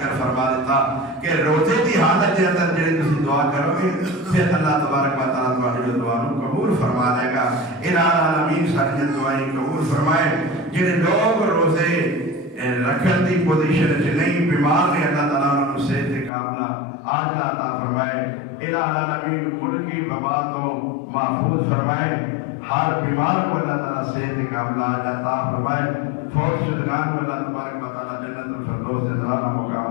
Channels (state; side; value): drops out; right; at 16.3 s